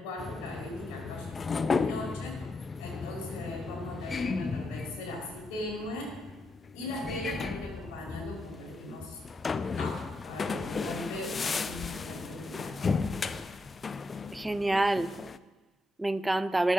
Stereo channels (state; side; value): normal; both; correlation 0.84